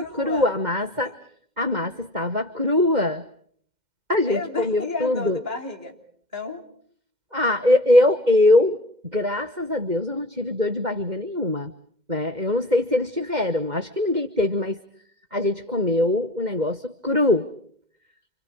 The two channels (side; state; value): left; late; 2.1 ms